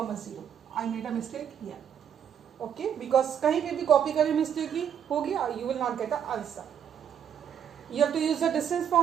0. I made a mistake here. Okay, because कहीं पे भी copy करने में mistake होगी, you will not get the answer. You have to use the distance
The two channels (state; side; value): quieter; left; 8.7 dB